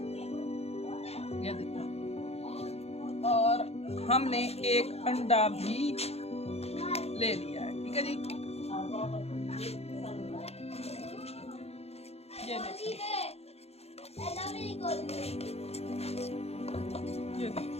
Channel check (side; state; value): right; late; 0.30 ms